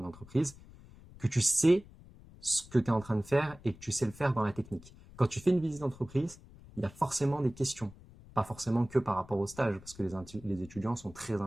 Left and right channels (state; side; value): noise; left; rumble, 21 dB below the sound